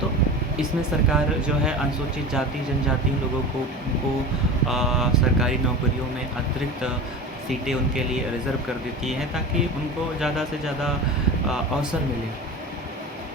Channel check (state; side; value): normal; both; correlation 0.31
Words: तो इसमें सरकार जो है अनुसूचित जाति, जनजाति लोगों को सरकारी नौकरियों में अतिरिक्त सीटें उनके लिए रिज़र्व कर देती है ताकि उनको ज़्यादा से ज़्यादा अवसर मिले।